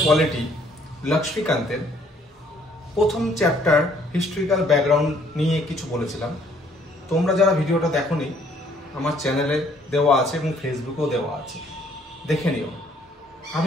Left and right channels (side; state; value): both; normal; correlation 0.63